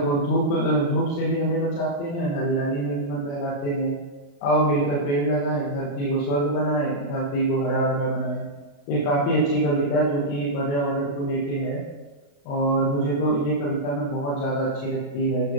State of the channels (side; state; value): right; late; 35 ms